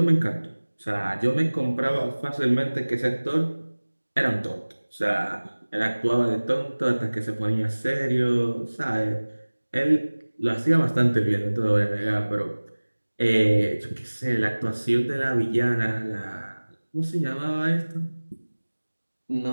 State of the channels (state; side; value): inverted; both; correlation -1.00